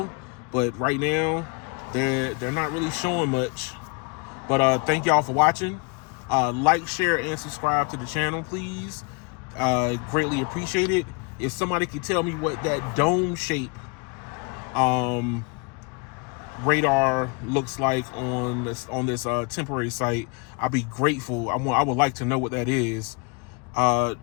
but right now, they're not really showing much. But thank y'all for watching. Like, share, and subscribe to the channel, please. Greatly appreciate it. If somebody could tell me what that dome shape radar looks like on this temporary site, I'd be grateful. I would like to know what that is.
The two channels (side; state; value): right; quieter; 32.9 dB